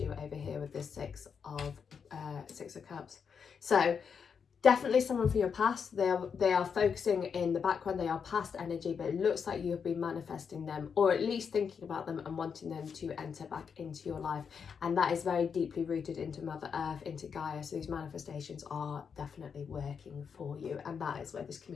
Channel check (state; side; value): quieter; right; 6.5 dB